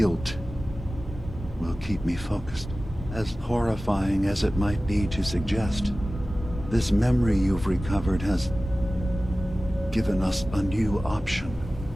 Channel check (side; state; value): both; normal; correlation 0.96